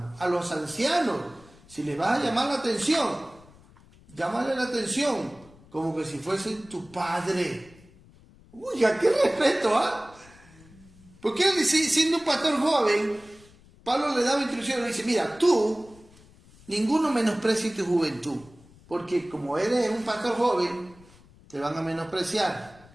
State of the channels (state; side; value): noise; left; rumble, 25 dB below the sound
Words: A los ancianos, si les vas a llamar la atención, llámale la atención como que si fuese tu padre. Uy, ¿a qué respeto, ah? Porque él, siendo un pastor joven, Pablo le daba instrucciones, le dice, mira, tú, ninguno menosprecie tu juventud, porque como eres un pastor joven, te van a